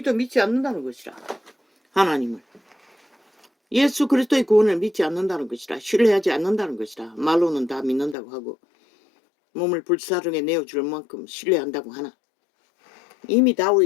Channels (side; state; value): right; drops out; at 8.2 s